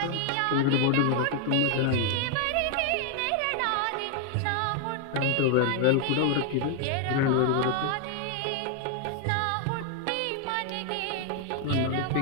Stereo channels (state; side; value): different; both; correlation 0.00